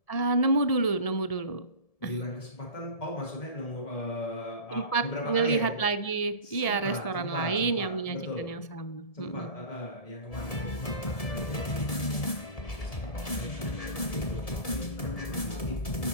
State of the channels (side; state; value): right; late; 1.7 ms